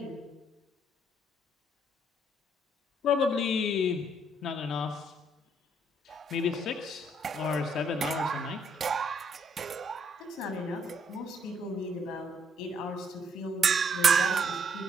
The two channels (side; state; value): both; normal; correlation 0.68